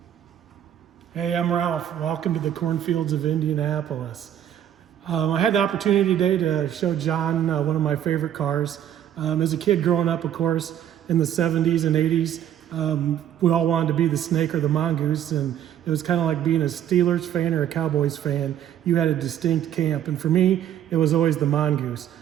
Hey, I'm Ralph. Welcome to the cornfields of Indianapolis. I had the opportunity today to show John one of my favorite cars. As a kid growing up, of course, in the 70s and 80s, we all wanted to be the Snake or the Mongoose, and it was kind of like being a Steelers fan or a Cowboys fan. You had a distinct camp, and for me, it was always the Mongoose.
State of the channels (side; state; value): left; quieter; 10.5 dB